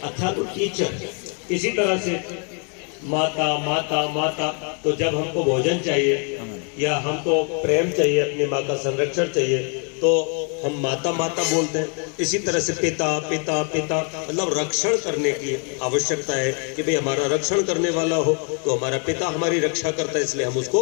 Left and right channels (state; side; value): quieter; right; 39.1 dB